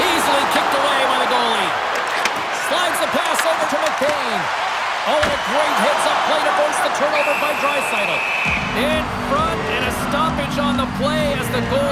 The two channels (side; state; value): both; identical; correlation 1.00